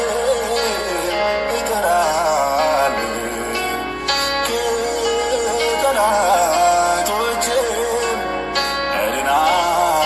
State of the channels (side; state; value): both; identical; correlation 1.00